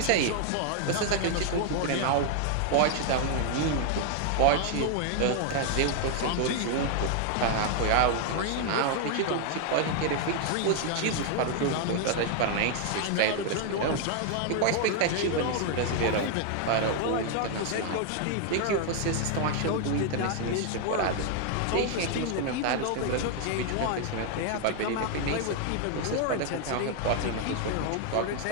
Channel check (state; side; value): different; both; correlation 0.00